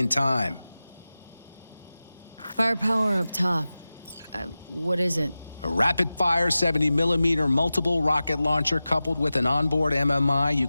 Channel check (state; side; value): inverted; both; correlation -0.95